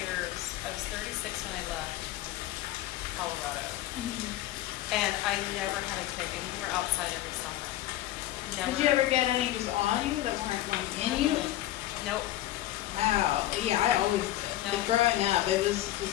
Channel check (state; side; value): quieter; right; 14.6 dB